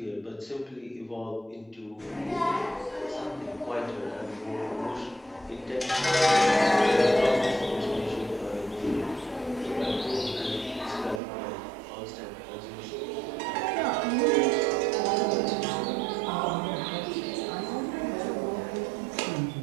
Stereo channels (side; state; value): left; drops out; at 11.2 s